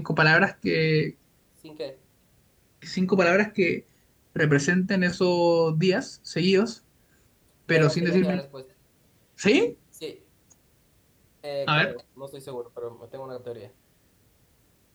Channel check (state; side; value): identical; both; correlation 1.00